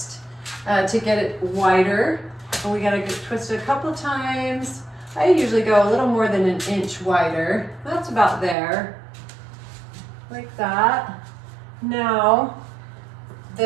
to get it wider. And we got to twist it a couple of times. I usually go a little more than an inch wider. That's about there, like that. Now,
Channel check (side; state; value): left; drops out; at 8.6 s